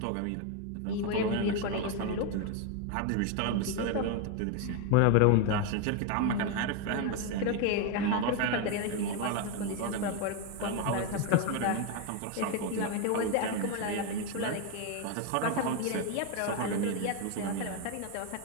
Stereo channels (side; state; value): both; different; correlation 0.01